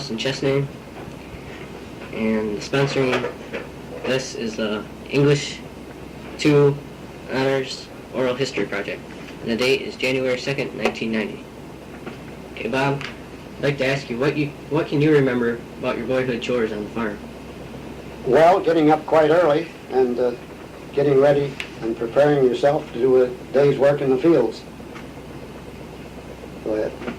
in Chesname, and sponsoring this is the English 2 Honors Oral History Project. And the date is January 2nd, 1990. Okay, Bob, I'd like to ask you, what can you remember about your boyhood chores on the farm? Well, getting up quite early and getting ready and preparing yourself to do a day's work in the fields. Go ahead.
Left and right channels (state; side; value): identical; both; correlation 1.00